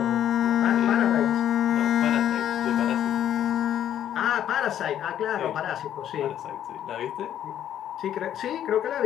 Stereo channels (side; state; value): right; quieter; 10.6 dB